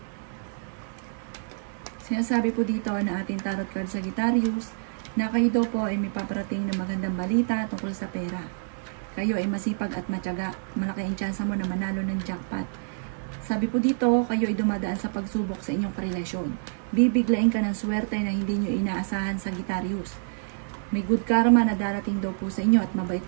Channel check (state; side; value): silent; left; digital silence